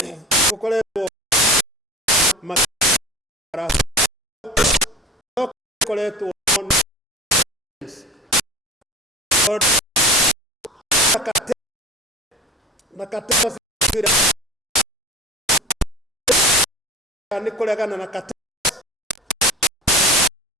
gukoretwo gukoretwo na katema ni kuregana na katema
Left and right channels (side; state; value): both; normal; correlation 0.36